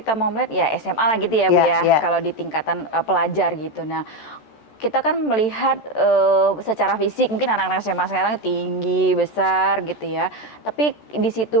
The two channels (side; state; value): right; late; 13 ms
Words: mau melihat ya SMA lah gitu ya Bu ya, kalau di tingkatan pelajar gitu. Nah kita kan melihat secara fisik mungkin anak-anak SMA sekarang tinggi, besar gitu ya. Tapi